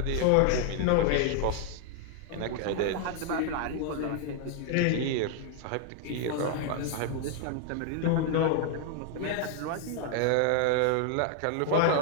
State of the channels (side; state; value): both; different; correlation 0.00